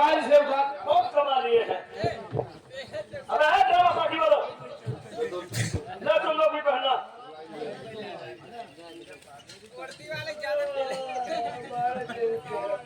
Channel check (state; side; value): identical; both; correlation 1.00